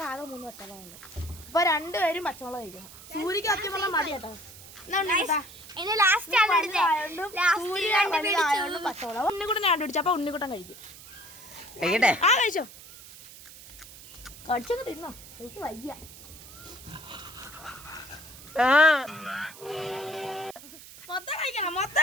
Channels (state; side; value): noise; right; hiss, 17 dB below the sound